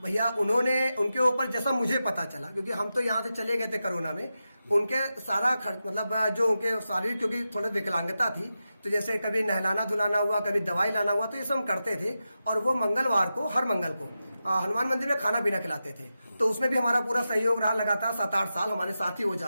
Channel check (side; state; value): both; inverted; correlation -0.91